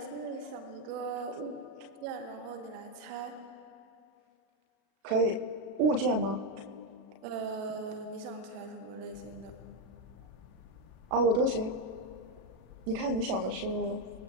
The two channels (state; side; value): late; left; 37 ms